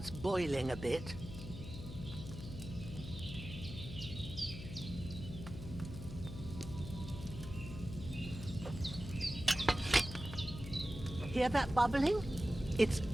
boiling a bit. Hear that bubbling? It's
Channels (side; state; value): left; noise; hum, 10 dB below the sound